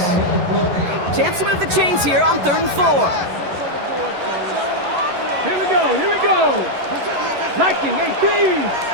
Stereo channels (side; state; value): left; late; 11 ms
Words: Chance to move the chains here on 3rd and 4. Here we go. Here we go. Liking 18.